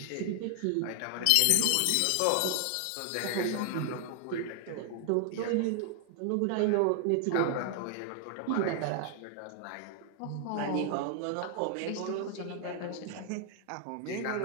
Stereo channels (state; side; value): different; both; correlation 0.00